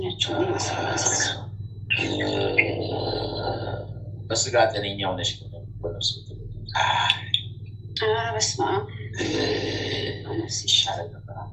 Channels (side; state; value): both; identical; correlation 1.00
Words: በስጋ ጤነኛ ሆነሽ በነፍስ በስመ አብ በነፍስ ይሻላል ነበር።